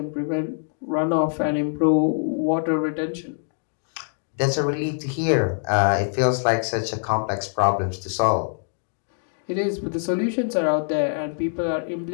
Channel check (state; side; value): silent; right; 63 dB below the other